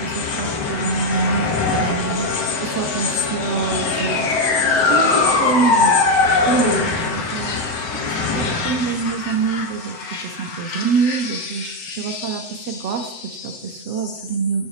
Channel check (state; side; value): late; right; 7.9 ms